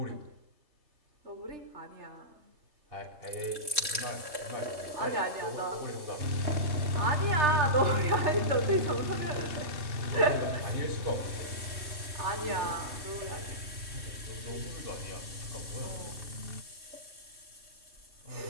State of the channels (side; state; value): left; late; 3.1 ms